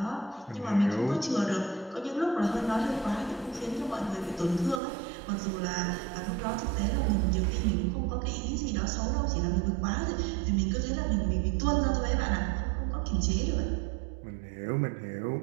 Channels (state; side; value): drops out; left; at 4.8 s